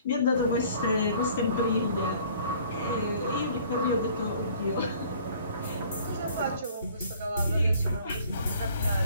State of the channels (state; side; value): inverted; both; correlation -0.54